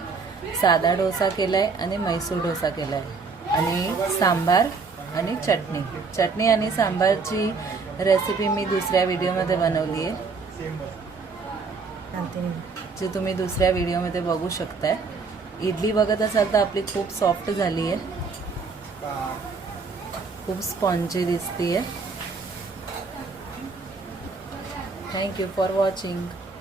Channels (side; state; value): left; quieter; 4.7 dB